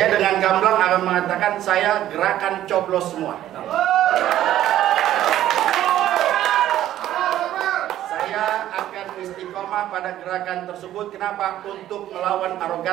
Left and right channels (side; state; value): left; quieter; 12.7 dB